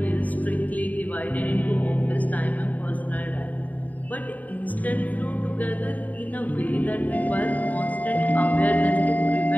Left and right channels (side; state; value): right; late; 0.075 ms